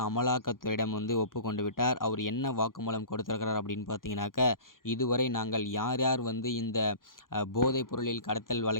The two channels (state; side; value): late; right; 0.90 ms